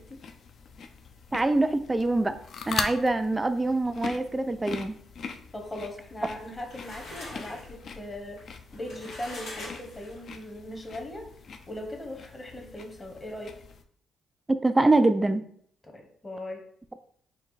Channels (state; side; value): normal; both; correlation 0.94